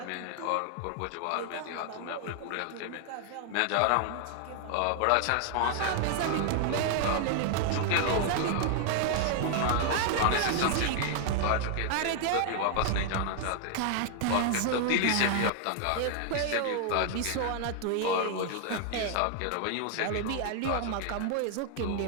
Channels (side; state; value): both; different; correlation 0.00